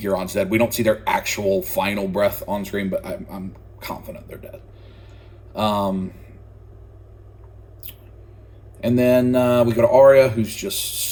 Euron's dead. We don't see their actual final breath on screen, but I'm confident they're dead. And then we go to Arya, who's just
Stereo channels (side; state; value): both; identical; correlation 1.00